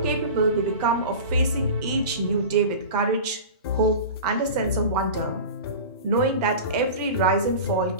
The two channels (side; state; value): both; inverted; correlation -0.33